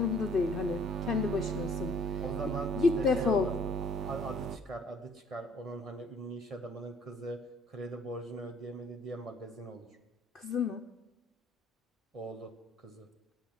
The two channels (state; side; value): normal; both; correlation 0.57